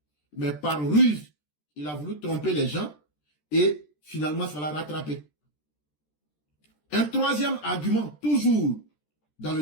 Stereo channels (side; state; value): right; late; 13 ms